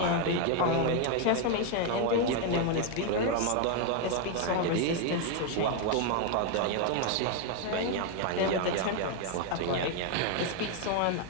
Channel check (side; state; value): both; different; correlation 0.01